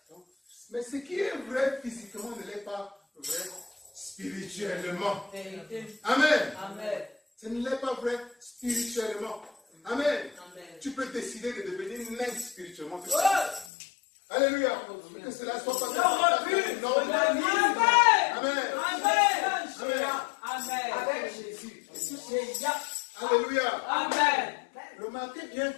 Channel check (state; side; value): drops out; right; at 13.7 s